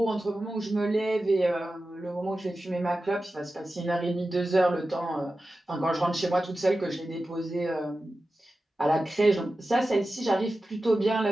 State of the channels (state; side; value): normal; both; correlation 0.94